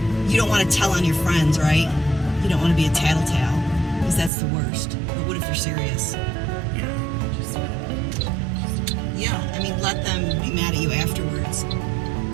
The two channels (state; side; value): drops out; left; at 4.3 s